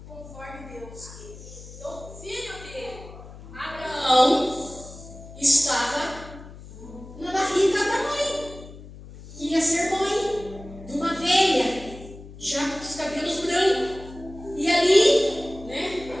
conforme Deus quer. Então o filho dele, Abraão, estava na barriga da mãe, ia ser mãe de uma velha, já com os cabelos brancos. E ali,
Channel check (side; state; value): left; noise; hum, 16 dB below the sound